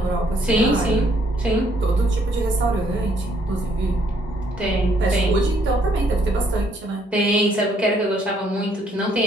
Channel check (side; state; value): both; normal; correlation 0.68